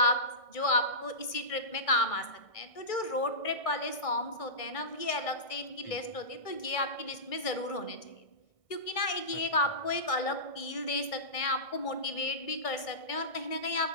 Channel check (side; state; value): right; late; 1.6 ms